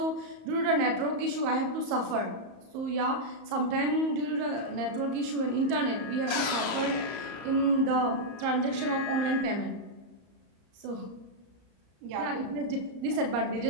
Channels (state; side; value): late; left; 34 ms